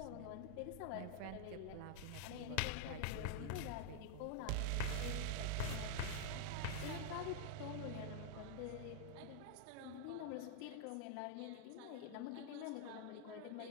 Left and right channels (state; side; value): different; both; correlation 0.00